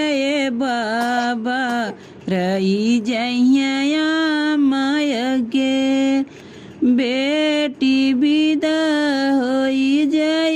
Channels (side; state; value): both; identical; correlation 1.00